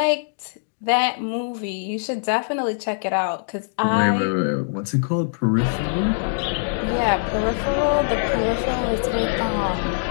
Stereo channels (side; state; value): right; silent; digital silence